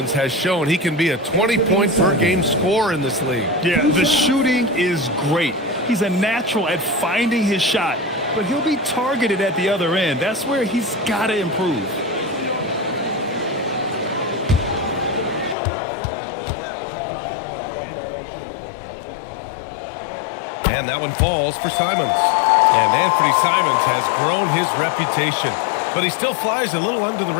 has shown he can be a 20-point-per-game scorer in this league. Yeah, the shooting is great. He's a natural at finding his shot, but he'll be targeted at the other end. That's where he's got to improve. And that one falls for Simons. And Anthony Simons has grown his reputation, but he still flies a little under the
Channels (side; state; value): right; drops out; at 15.6 s